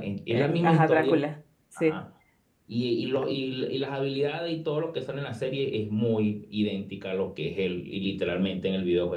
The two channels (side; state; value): both; identical; correlation 1.00